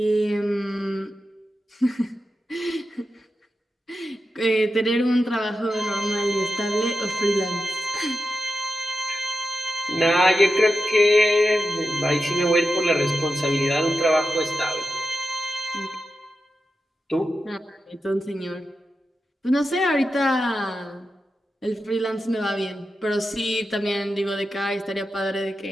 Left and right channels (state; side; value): normal; both; correlation 0.90